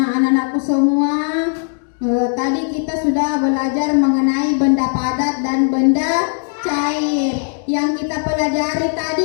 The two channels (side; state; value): right; silent; digital silence